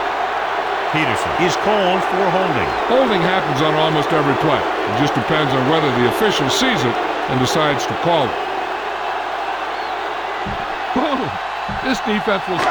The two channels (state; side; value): noise; left; hum, 28 dB below the sound